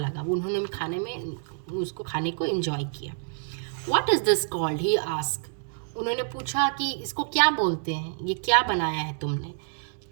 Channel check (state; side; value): silent; left; 60 dB below the other